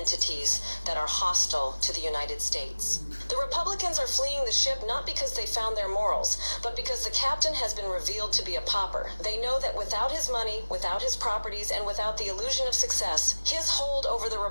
that are hostile to the United States. The Republicans are fleeing the ship not because they found their morals, but because the captain has been revealed to be a pauper. They know that without his money, without his properties, and without the illusion of success, his hold over the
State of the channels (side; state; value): both; inverted; correlation -1.00